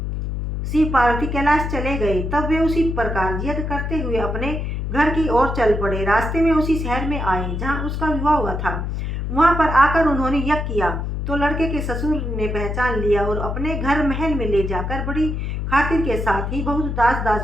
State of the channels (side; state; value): left; noise; hum, 3 dB below the sound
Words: शिव पार्वती कैलाश चले गए। तब वे उसी प्रकार यज्ञ करते हुए अपने घर की ओर चल पड़े। रास्ते में उसी शहर में आए जहाँ उसका विवाह हुआ था। वहाँ पर आकर उन्होंने यज्ञ किया तो लड़के के ससुर ने पहचान लिया और अपने घर महल में ले जाकर बड़ी खातिर के साथ ही बहुत दास